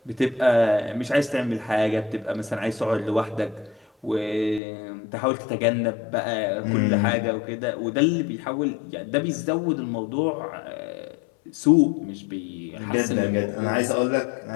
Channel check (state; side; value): drops out; right; at 4.6 s